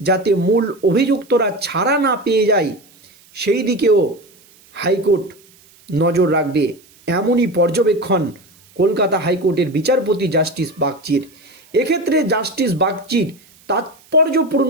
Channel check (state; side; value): noise; right; hiss, 28 dB below the sound